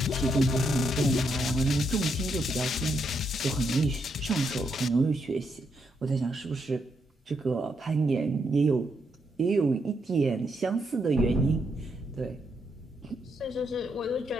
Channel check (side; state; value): both; normal; correlation 0.79